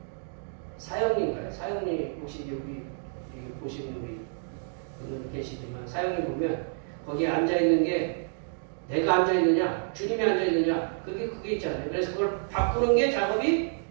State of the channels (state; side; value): silent; left; digital silence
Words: 사형님인가요? 사형님 혹시 여기 보시는 우리 분들 계시지만 사형님 보면 거기에 앉아있는 게 내가 앉아있느냐 주님이 앉아있느냐 그게 있잖아요. 그래서 그걸 바꾸는 게 작업이